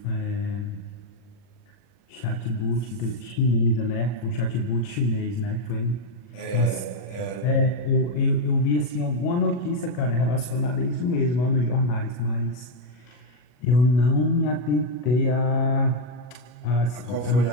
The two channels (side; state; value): right; late; 40 ms